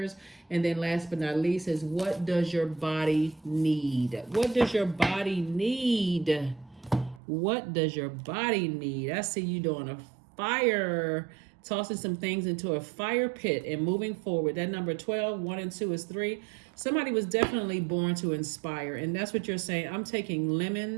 And then last but not least is, what does your body need? What does your body need? What does your body need? I see you doing a fire, tossing some things into a fire pit and moving forward. That number 12, 1 and 2 is 3. Somebody was definitely born to inspire. And that's what you're saying. I'm taking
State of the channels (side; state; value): left; drops out; at 7.2 s